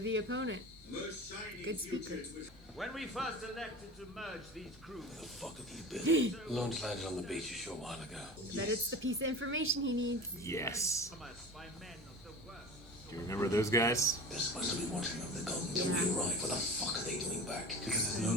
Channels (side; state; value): both; normal; correlation 0.34